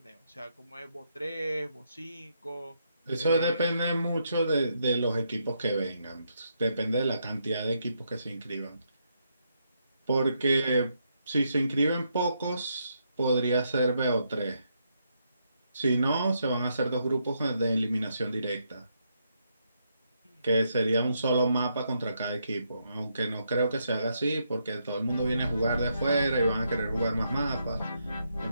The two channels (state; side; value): inverted; both; correlation -0.78